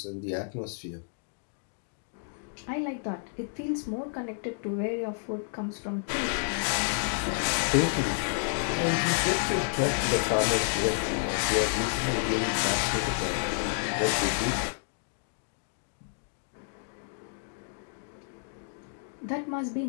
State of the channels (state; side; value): silent; right; digital silence